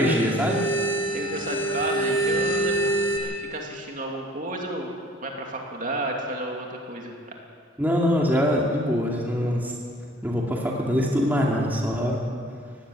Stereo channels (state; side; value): normal; both; correlation 0.52